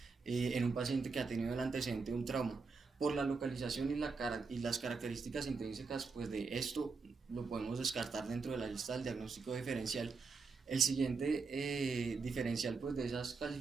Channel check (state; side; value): quieter; left; 4.6 dB